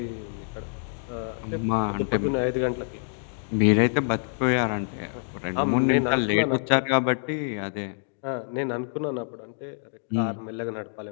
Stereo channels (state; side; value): silent; right; 60 dB below the other